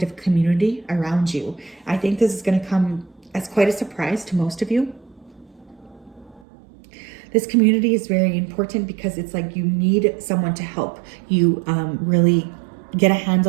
community around you. I think this is going to come as quite a surprise to most of you. This community is very important because it's like you need someone to help you really get a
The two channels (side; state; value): left; drops out; at 6.5 s